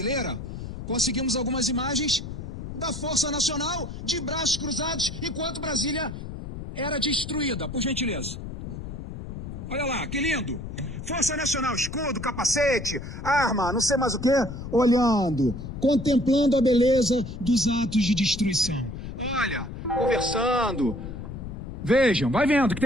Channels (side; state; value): left; noise; rumble, 9 dB below the sound